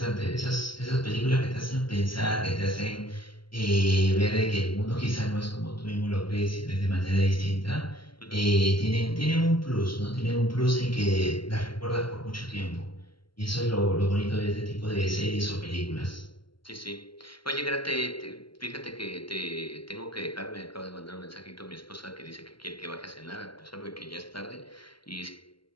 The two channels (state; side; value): late; right; 0.73 ms